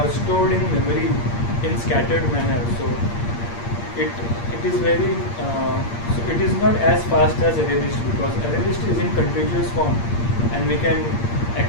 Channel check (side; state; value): right; late; 8.6 ms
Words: stored in memory in scattered manner, so it is not as fast as array list because array list is in contiguous form and we can